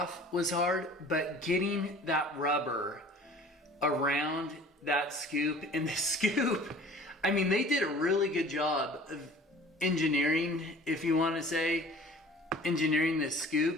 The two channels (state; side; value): normal; both; correlation 0.46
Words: was hard, but getting that rubber around that scoop, and the scoop, I mean, they did a really good job of engineering, if you want to say, engineering this